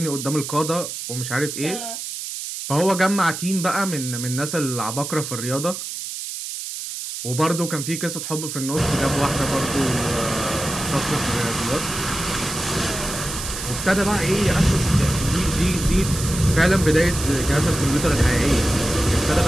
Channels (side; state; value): right; noise; hiss, 7 dB below the sound